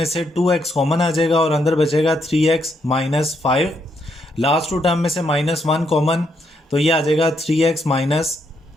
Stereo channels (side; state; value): both; normal; correlation 0.77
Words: से 2x कॉमन आ जाएगा और अंदर बचेगा 3x -5। लास्ट टू टर्म में से -1 कॉमन, तो ये आ जाएगा 3x